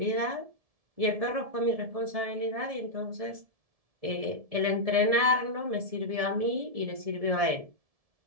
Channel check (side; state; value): left; late; 1.7 ms